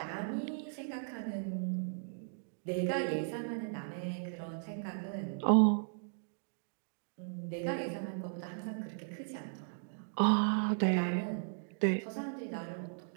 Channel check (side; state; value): left; silent; digital silence